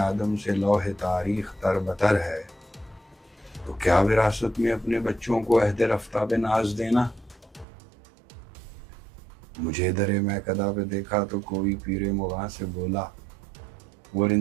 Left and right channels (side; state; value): left; drops out; at 7.7 s